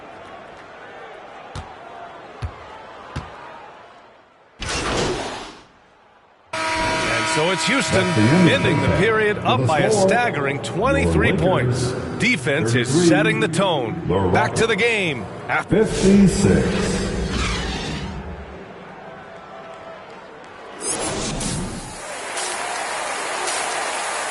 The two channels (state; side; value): identical; both; correlation 1.00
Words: So it's Houston ending the period up by a staggering 23 points. Defense is setting the tone. Back to the game. 56.